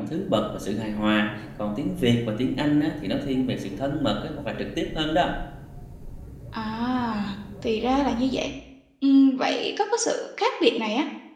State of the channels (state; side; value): identical; both; correlation 1.00